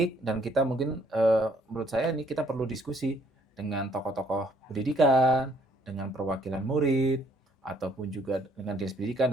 dan kita mungkin, menurut saya ini kita perlu diskusi dengan tokoh-tokoh pendidikan, dengan perwakilan murid, ataupun juga dengan Dinas Pendidikan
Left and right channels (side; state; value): both; normal; correlation 0.64